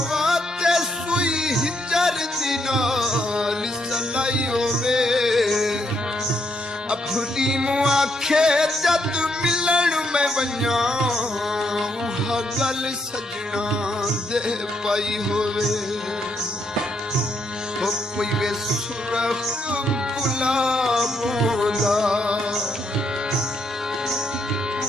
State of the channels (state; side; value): normal; both; correlation 0.76